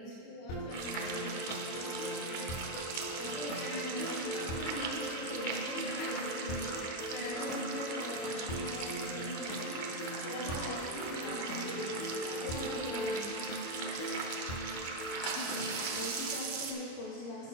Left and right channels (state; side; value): late; right; 25 ms